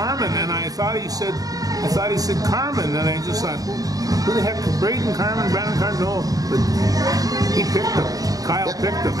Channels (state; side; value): late; left; 0.18 ms